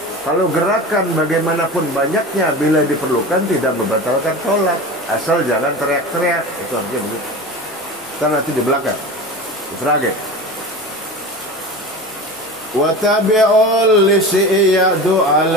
Kalau gerakan bagaimanapun banyaknya bila diperlukan tidak membatalkan sholat. Asal jangan teriak-teriak. Itu artinya begitu. Kita nanti di belakang Ifrage wa tabi'ul lisiyadu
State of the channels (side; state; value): both; normal; correlation 0.31